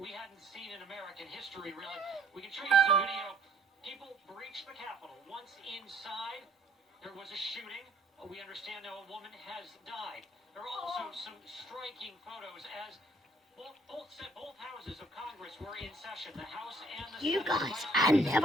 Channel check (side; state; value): both; normal; correlation 0.62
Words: hadn't seen in American history, really. We can show you some video. People breached the Capitol. Once inside, there was a shooting. We understand now a woman has died. There are also some striking photos as both houses of Congress were in session. The House and the You Senate. guys, I